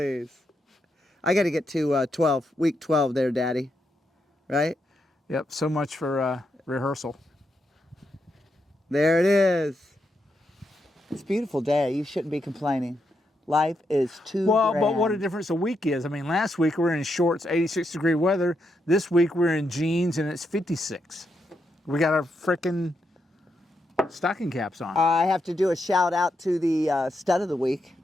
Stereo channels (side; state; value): both; normal; correlation 0.82